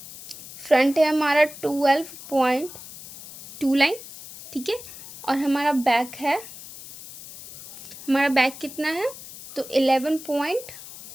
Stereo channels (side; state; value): left; noise; hiss, 15 dB below the sound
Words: फ्रंट है हमारा 12.2 लाइन, ठीक है। और हमारा बैक है, हमारा बैक कितना है, तो